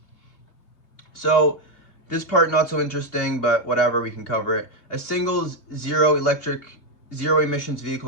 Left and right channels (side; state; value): right; late; 2.8 ms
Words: So this part not so interesting, but whatever, we can cover it. A single zero emissions